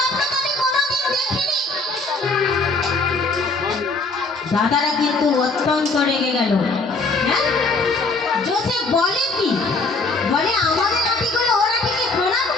তো আমি কোনোদিন দেখিনি দাদারা কিন্তু অত্যন্ত রেগে গেল হ্যাঁ জোসেফ বলে কি বলে আমাদের আটিগুলো ওর আটিকে প্রণাম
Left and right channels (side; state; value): right; quieter; 3.5 dB